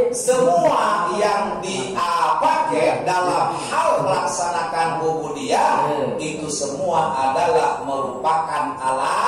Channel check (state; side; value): identical; both; correlation 1.00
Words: Semua yang dipakai dalam hal melaksanakan ubudiyah itu semua adalah merupakan